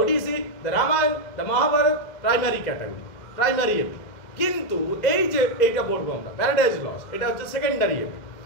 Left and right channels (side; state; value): right; late; 2.1 ms